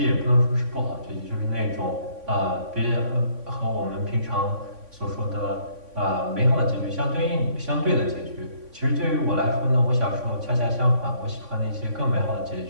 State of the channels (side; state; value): left; late; 3.5 ms